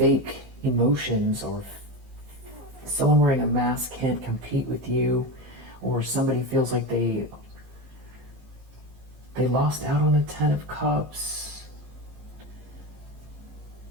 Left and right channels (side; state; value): left; late; 15 ms